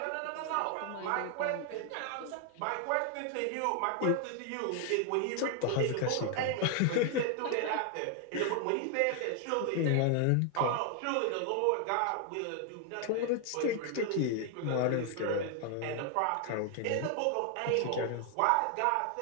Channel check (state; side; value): different; both; correlation 0.00